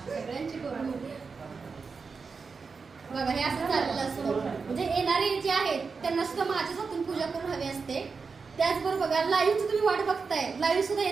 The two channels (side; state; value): left; quieter; 5.0 dB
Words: सगळ्यांची करू. बघा हे असं चाललेलं असतं. म्हणजे येणारे जे आहेत त्यांना सुद्धा माझ्याच हातून पूजा करून हवी असते. त्याचबरोबर बघा लाईव्हची तुम्ही वाट बघताय, लाईव्ह सुद्धा